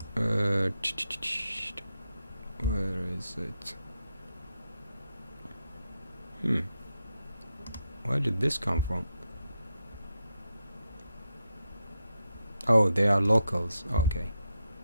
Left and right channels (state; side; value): inverted; both; correlation -0.84